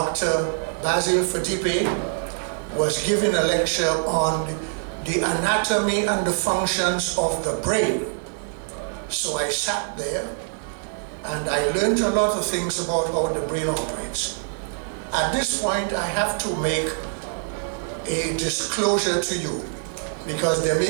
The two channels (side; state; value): left; silent; 56 dB below the other